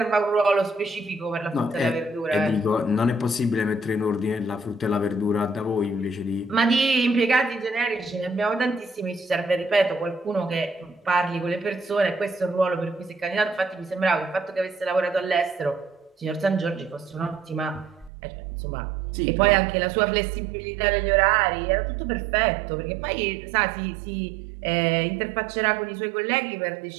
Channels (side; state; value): left; drops out; at 18.1 s